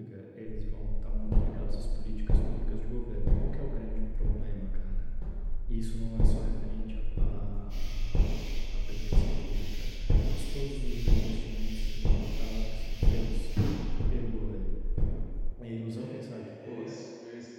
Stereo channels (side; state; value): both; identical; correlation 1.00